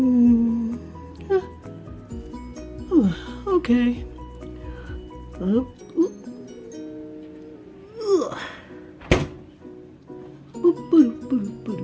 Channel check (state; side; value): identical; both; correlation 1.00